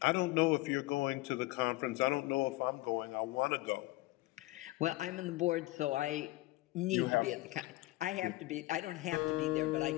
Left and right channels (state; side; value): quieter; right; 19.5 dB